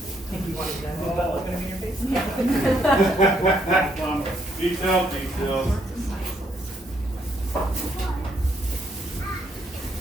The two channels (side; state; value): both; normal; correlation 0.72